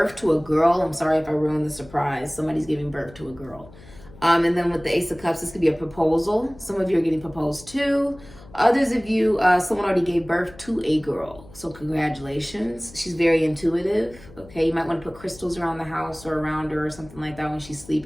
to a girl. I'm sorry if I ruined the surprise. Somebody's giving birth to a girl. And then with the Ace of Cups, this could be a proposal. Some of you are getting proposed to. Others of you, someone already gave birth to a girl. So congratulations. She's very intuitive. Okay, you might want to put crystals around the house or around her or something like that when she's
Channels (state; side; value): noise; left; hum, 21 dB below the sound